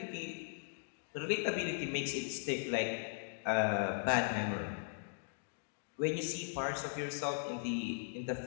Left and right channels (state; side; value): silent; right; digital silence